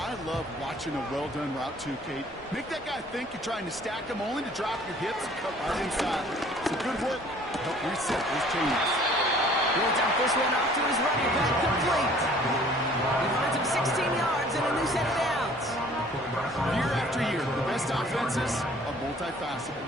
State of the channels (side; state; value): both; normal; correlation 0.53